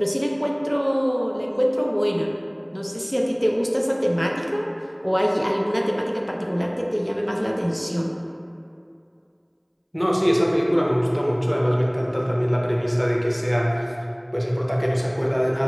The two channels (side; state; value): both; identical; correlation 1.00